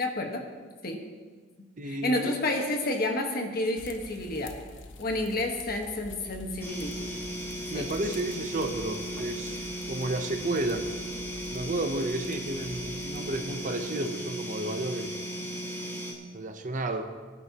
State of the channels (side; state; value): both; normal; correlation 0.38